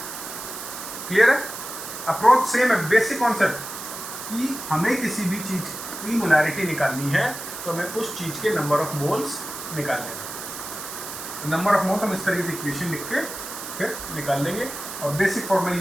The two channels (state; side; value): noise; right; hiss, 9 dB below the sound